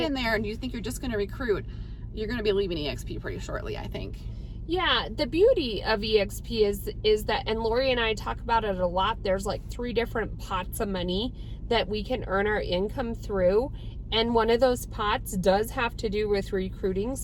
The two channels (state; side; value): identical; both; correlation 1.00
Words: in there and you think you're just going to recruit, you're going to be leaving eXp pretty shortly, I think. Yeah, the beauty of eXp is that, and Laurie and I talk about it a lot, there's like 3 different pots of money that we can earn our income through. And one of those pots does have to do with recruiting.